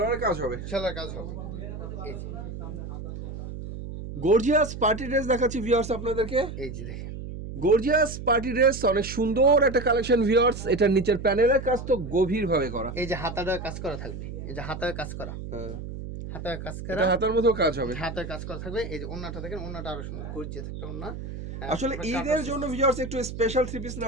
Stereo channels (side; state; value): right; noise; hum, 9 dB below the sound